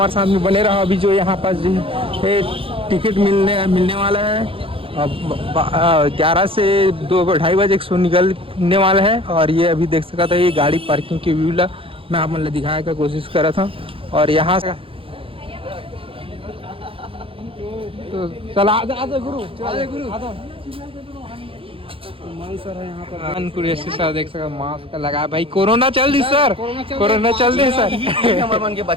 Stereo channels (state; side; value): late; left; 0.26 ms